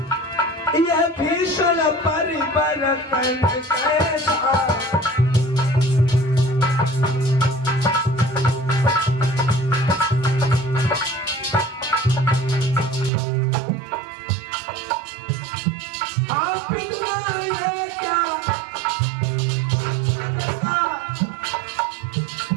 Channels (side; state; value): left; drops out; at 13.1 s